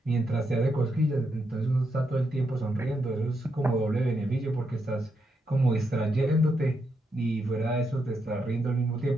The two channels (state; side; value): normal; both; correlation 0.81